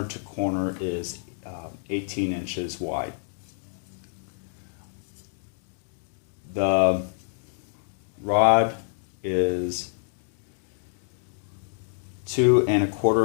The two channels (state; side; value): silent; right; digital silence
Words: to corner is 18 inches wide. The rod is 2